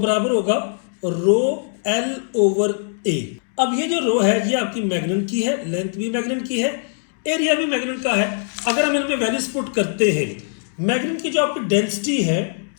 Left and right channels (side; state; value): right; silent; digital silence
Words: होगा रो एल ओवर ए। अब ये जो रो है ये आपकी मैग्नेट की है, लेंथ भी मैग्नेट की है, एरिया भी मैग्नेट का है। अगर हम इनमें वैल्यूज पुट करते हैं, मैग्नेट की जो आपकी डेंसिटी है